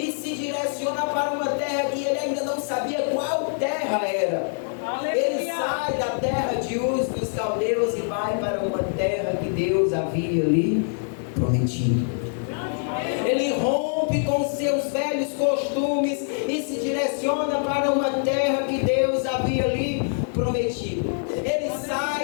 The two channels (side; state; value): right; silent; digital silence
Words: se direciona para uma terra que ele ainda não sabia qual terra era. Ele sai da terra de Uz dos caldeus e vai para uma terra que Deus havia lhe prometido. Ele rompe com seus velhos costumes e se direciona para uma terra que Deus havia lhe prometido. Ele